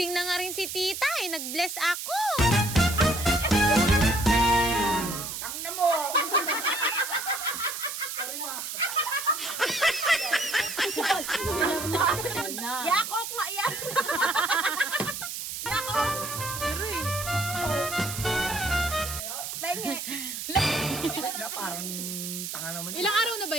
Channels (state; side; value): noise; right; hiss, 6 dB below the sound